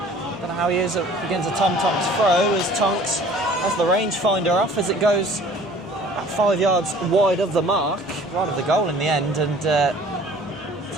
don't know how he is against a Tom Tonks throw, as Tonks has the rangefinder off as it goes about 5 yards wide of the mark, right of the goal in the end, and to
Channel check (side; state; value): both; normal; correlation 0.50